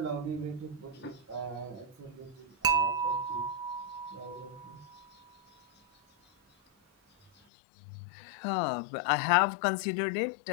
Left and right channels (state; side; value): drops out; right; at 7.3 s